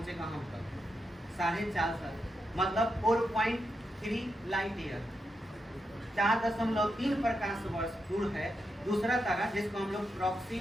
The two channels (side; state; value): both; normal; correlation 0.85